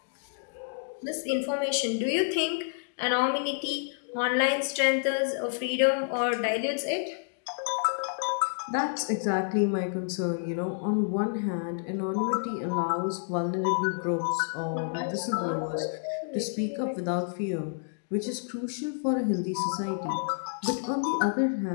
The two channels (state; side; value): silent; right; digital silence